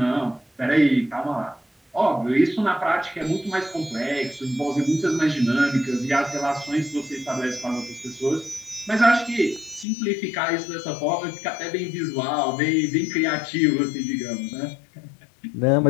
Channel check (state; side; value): drops out; right; at 9.9 s